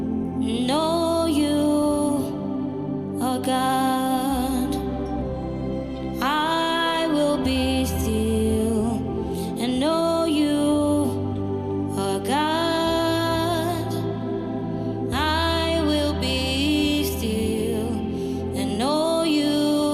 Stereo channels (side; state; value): both; identical; correlation 1.00